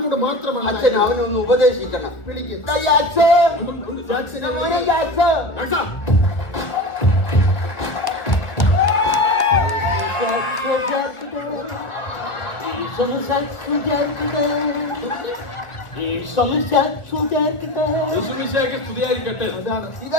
മാത്രമാണ്. അച്ഛൻ അവനൊന്ന് ഉപദേശിക്കണം. വിളിക്ക്. അച്ഛൻ മോനെ അച്ഛൻ യേശുമിശിഹായ്ക്ക് സ്തുതിയായിരിക്കട്ടെ.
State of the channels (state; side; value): late; right; 1.4 ms